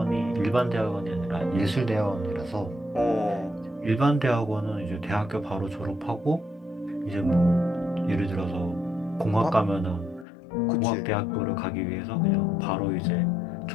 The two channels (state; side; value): drops out; right; at 10.2 s